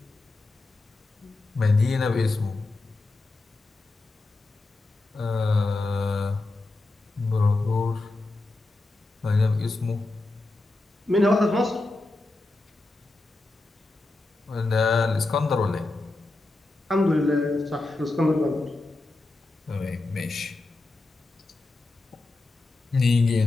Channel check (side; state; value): right; quieter; 3.1 dB